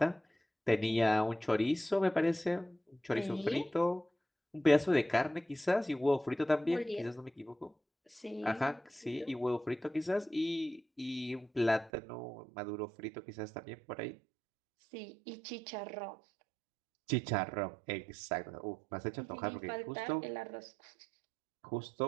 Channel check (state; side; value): drops out; left; at 11.9 s